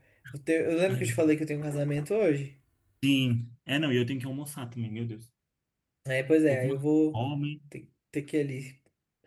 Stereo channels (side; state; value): both; identical; correlation 1.00